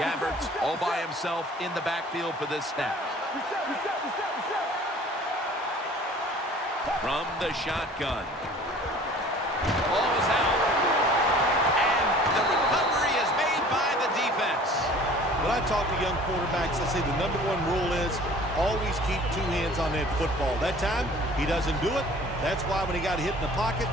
all by himself in the backfield for this snap. From the shotgun. Ball is out. And the recovery is made by the defense. When I talk to young quarterbacks, I say the #1 rule is always keep two hands on that football. That time, he doesn't do it. That's why when he got hit in the pocket,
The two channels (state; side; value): normal; both; correlation 0.48